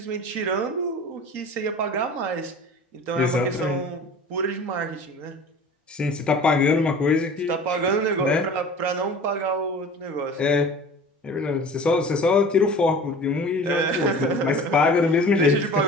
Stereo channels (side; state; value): both; normal; correlation 0.40